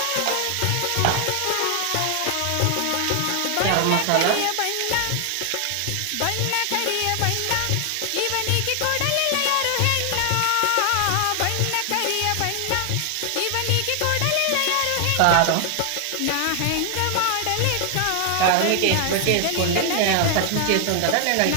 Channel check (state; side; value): different; both; correlation 0.00